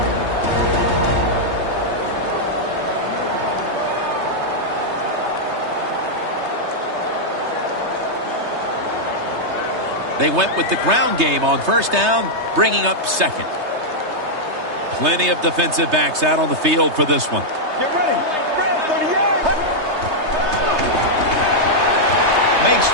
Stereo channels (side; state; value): left; late; 3.3 ms